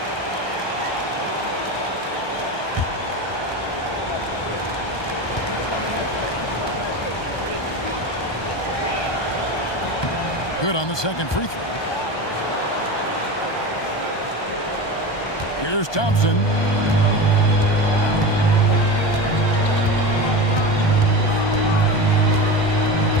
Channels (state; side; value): late; right; 1.2 ms